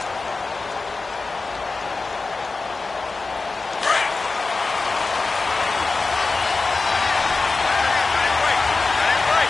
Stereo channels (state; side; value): quieter; right; 3.9 dB